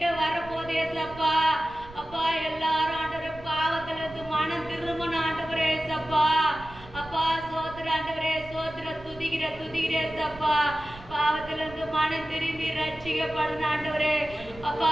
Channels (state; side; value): noise; right; rumble, 18 dB below the sound